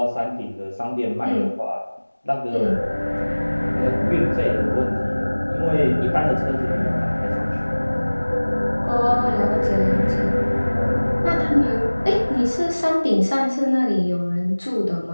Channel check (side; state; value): both; inverted; correlation -1.00